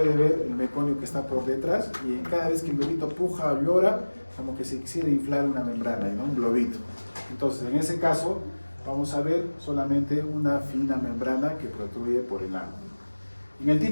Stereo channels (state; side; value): inverted; both; correlation -1.00